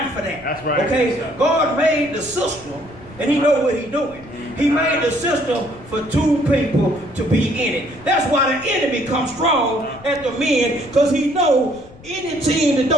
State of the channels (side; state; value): left; noise; rumble, 21 dB below the sound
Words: for that. That's right. Okay? God made the system, and he know what he's doing. He made the system for two people to be in it. That's why the enemy comes strong at the men, because he knows any team that